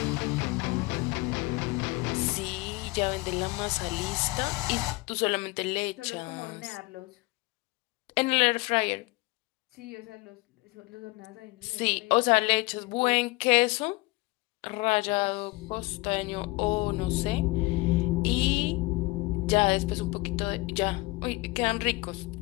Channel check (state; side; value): quieter; right; 23.1 dB